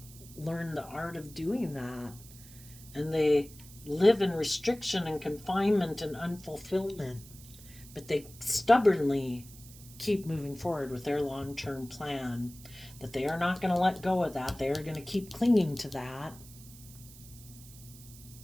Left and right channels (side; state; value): right; noise; hiss, 19 dB below the sound